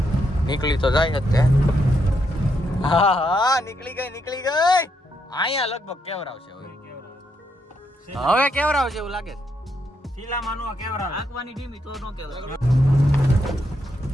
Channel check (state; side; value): normal; both; correlation 0.78